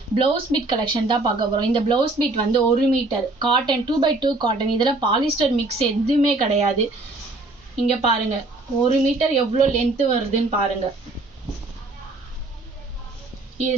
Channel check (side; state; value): left; quieter; 3.0 dB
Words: ப்ளவுஸ் பீட் கலெக்ஷன் தான் பார்க்க போறோம். இந்த ப்ளவுஸ் பீட் வந்து 1 மீட்டர் காட்டன் 2x2 காட்டன். இதுல பாலிஸ்டர் மிக்ஸ் எதுவுமே கிடையாது. இங்க பாருங்க 1 மீட்டர் எவ்வளோ லென்த் வருதுன்னு பாருங்க.